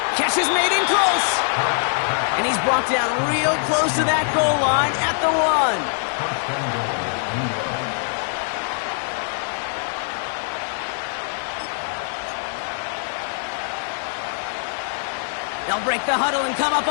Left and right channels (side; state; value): right; silent; digital silence